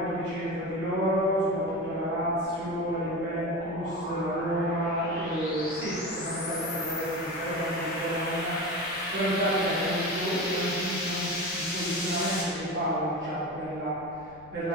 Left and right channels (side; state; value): left; noise; rumble, 23 dB below the sound